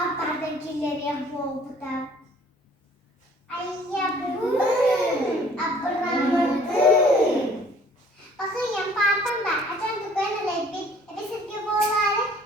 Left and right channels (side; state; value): both; normal; correlation 0.55